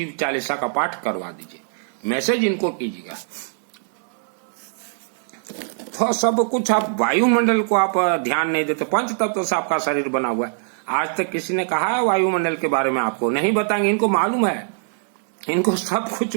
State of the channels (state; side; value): silent; left; digital silence